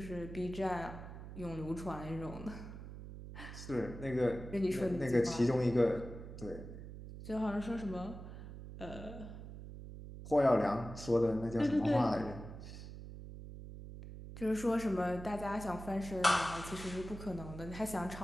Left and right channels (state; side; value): noise; right; hum, 11 dB below the sound